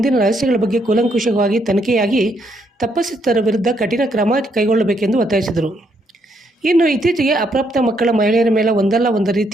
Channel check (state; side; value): normal; both; correlation 0.74